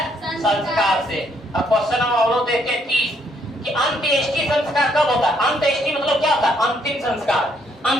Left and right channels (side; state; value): both; normal; correlation 0.70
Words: संस्कार से। अब क्वेश्चन नंबर हम लोग देखते हैं 30 कि अंत्येष्टि संस्कार कब होता है? अंत्येष्टि मतलब क्या होता है? अंतिम संस्कार।